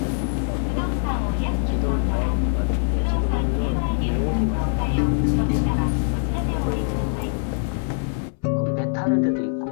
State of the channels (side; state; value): right; silent; 63 dB below the other